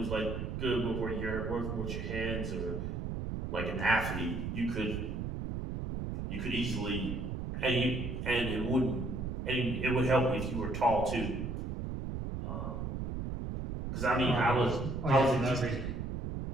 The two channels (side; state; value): right; noise; rumble, 4 dB below the sound